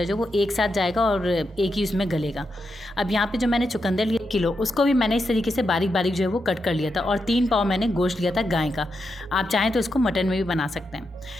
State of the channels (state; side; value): normal; both; correlation 0.85